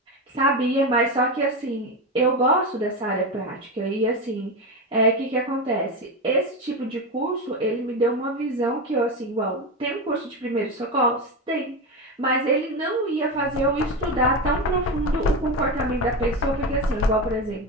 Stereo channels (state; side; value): normal; both; correlation 0.17